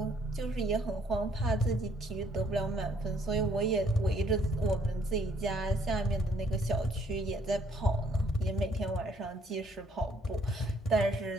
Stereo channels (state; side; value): normal; both; correlation 0.65